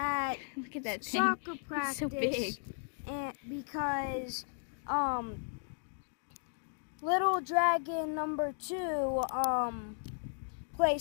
Look at that thing. soccer It's practice, so big. and because Little Dragon number 2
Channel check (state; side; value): silent; right; digital silence